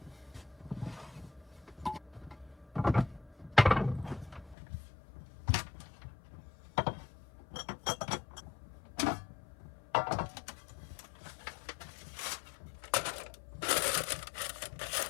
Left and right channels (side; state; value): right; drops out; at 4.5 s